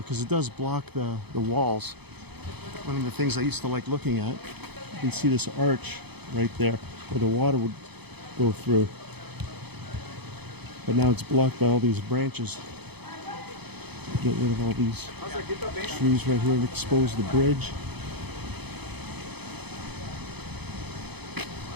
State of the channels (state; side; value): late; left; 0.98 ms